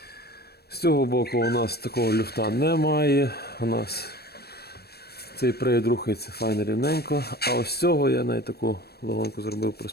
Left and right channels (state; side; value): late; right; 0.47 ms